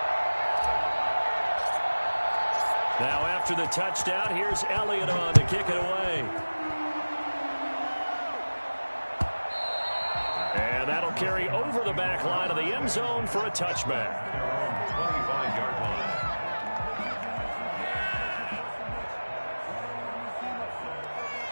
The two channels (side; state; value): both; inverted; correlation -1.00